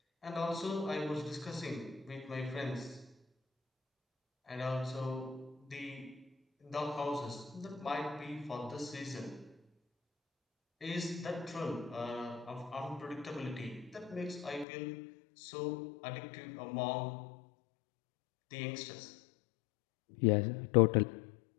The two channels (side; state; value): right; drops out; at 14.7 s